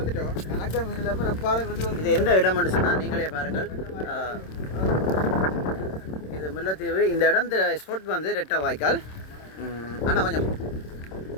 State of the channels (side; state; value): right; late; 26 ms